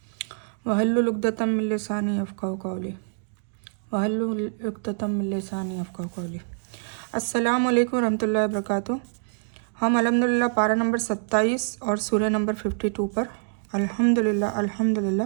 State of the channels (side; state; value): left; silent; digital silence